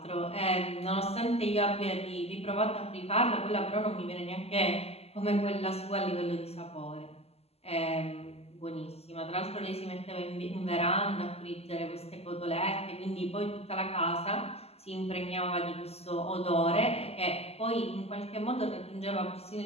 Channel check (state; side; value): late; right; 0.29 ms